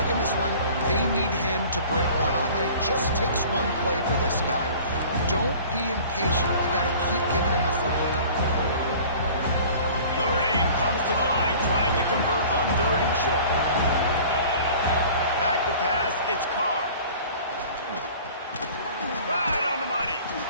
in this one, they need him to break one off, and it just takes one play for this guy. Don't be impatient. You got to keep giving him the football. Notre Dame comes to the line trying to convert on 3rd and short. Back to pass, it's Carr. Right on the money.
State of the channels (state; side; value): inverted; both; correlation -0.46